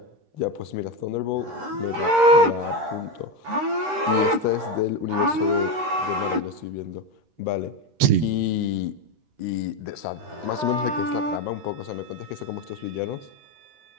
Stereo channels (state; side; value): late; left; 13 ms